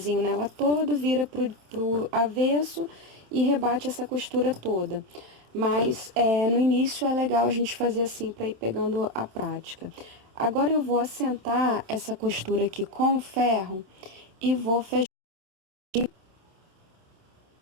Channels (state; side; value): late; left; 27 ms